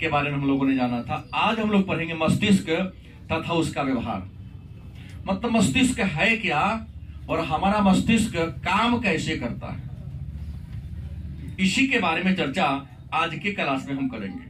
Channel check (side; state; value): both; identical; correlation 1.00